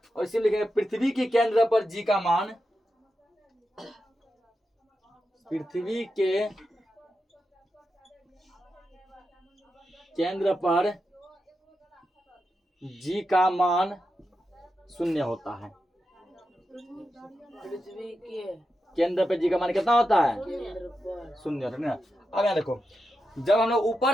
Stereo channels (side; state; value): both; normal; correlation 0.88